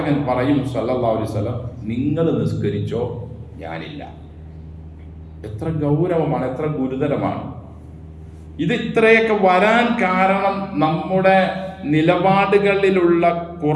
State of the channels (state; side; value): identical; both; correlation 1.00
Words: പറയും സല്ലല്ലാഹു അലൈഹി വസല്ലം, നിങ്ങൾ നിസ്കരിച്ചോ, ഞാനില്ല. എത്ര ഗൗരവമാണ്, എത്ര ഗുരുതരമാണ് ഇത്. ഇത്രയൊക്കെ വരാൻ കാരണം നമ്മുടെ നിലപാടുകളിലുള്ള